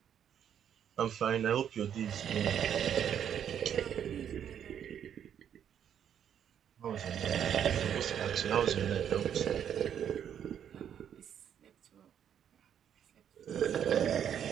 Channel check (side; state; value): left; quieter; 9.1 dB